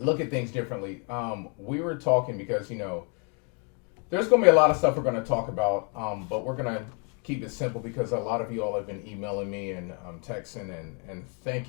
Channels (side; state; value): right; quieter; 37.1 dB